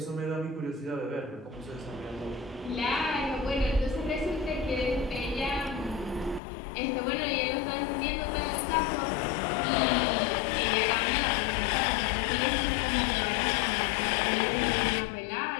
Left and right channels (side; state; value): right; drops out; at 6.4 s